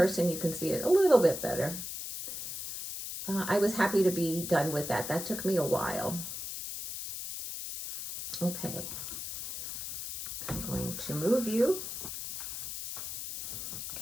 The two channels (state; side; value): noise; left; hiss, 7 dB below the sound